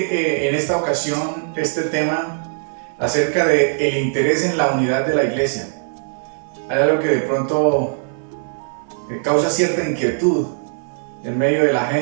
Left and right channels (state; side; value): silent; left; 66 dB below the other